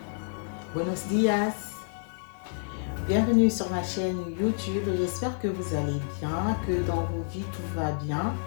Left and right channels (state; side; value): silent; right; 56 dB below the other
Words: buenos días. Bienvenue sur ma chaîne YouTube. J'espère que vous allez bien, que dans vos vies tout va bien.